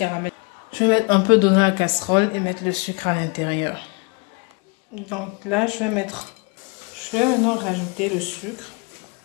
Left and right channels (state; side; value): quieter; right; 31.0 dB